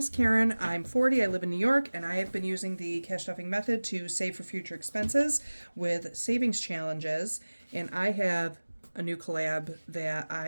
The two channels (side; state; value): both; inverted; correlation -1.00